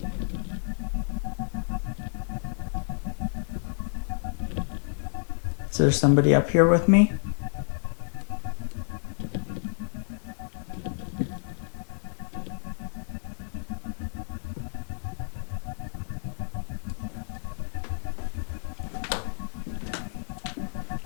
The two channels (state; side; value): silent; right; 58 dB below the other